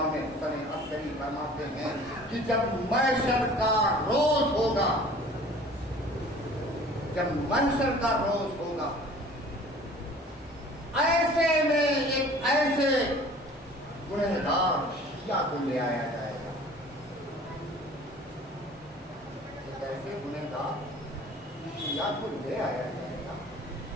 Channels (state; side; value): normal; both; correlation 0.47